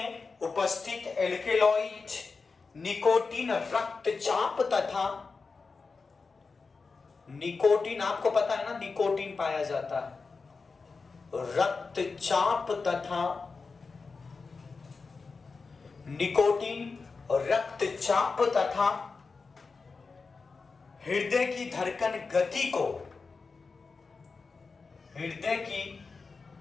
उपस्थित एल्केलॉइड निकोटीन रक्तचाप तथा, निकोटीन आपको पता है ना, निकोटीन पाया जाता है, रक्तचाप तथा, निकोटीन रक्तचाप तथा हृदय की धड़कन गति को, हृदय की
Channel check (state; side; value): quieter; right; 4.5 dB